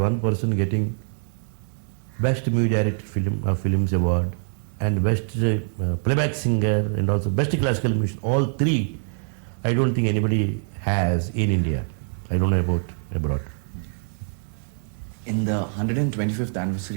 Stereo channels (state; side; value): silent; left; 62 dB below the other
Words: person getting best movie director films award and best playback singer and also best classical musician. All 3, I don't think anybody has in India. I don't know about abroad. In the 125th